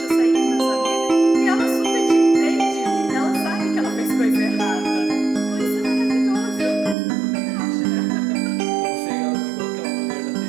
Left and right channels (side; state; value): left; drops out; at 7.0 s